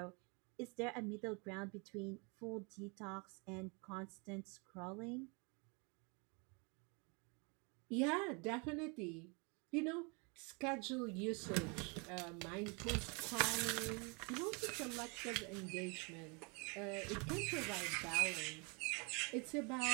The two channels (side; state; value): left; quieter; 32.4 dB